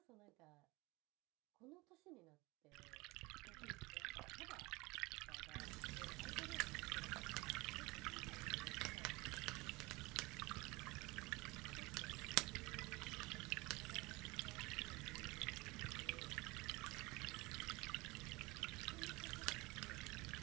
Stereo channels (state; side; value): quieter; left; 23.4 dB